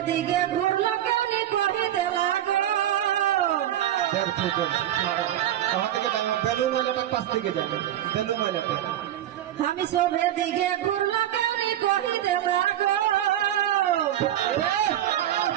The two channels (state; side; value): quieter; left; 12.1 dB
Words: দিকে ঘুরলো কেনে কহে দেলা हम सोभे दिखे घूमो केने कही दे लागो